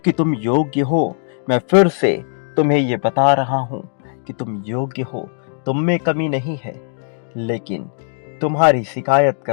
तुम योग्य हो। मैं फिर से तुम्हें ये बता रहा हूं कि तुम योग्य हो, तुम में कमी नहीं है, लेकिन तुम्हारी शिकायत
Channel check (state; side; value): silent; right; digital silence